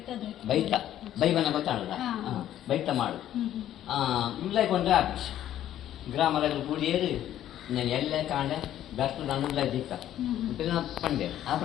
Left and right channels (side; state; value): right; quieter; 11.9 dB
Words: ಬೈಬನ ಗೊತ್ತಾಡಲ್ಲ ಬೈತ ಮಾಡು ಇಲ್ಲಕೊಂಡ್ರೆ ಆಫೀಸ್ ಗ್ರಾಮದಲ್ಲಿ ಕೂಡಿಯೇರಿ ನಾನು ಎಲ್ಲ ಕಾಂಡೆ ಗಷ್ಟು ನನ್ನೆಲ್ಲ ದಿಕ್ಕ ಪಂಡೆ ಆ